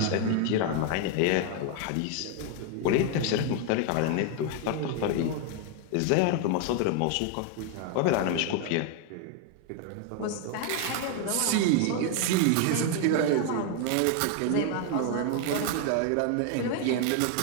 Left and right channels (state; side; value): different; both; correlation 0.01